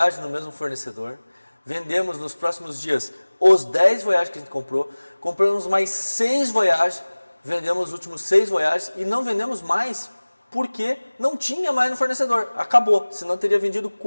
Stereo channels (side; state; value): both; inverted; correlation -1.00